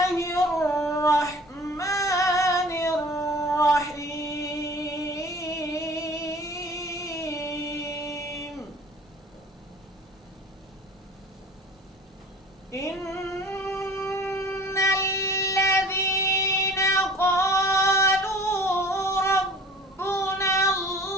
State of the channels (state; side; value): normal; both; correlation 0.45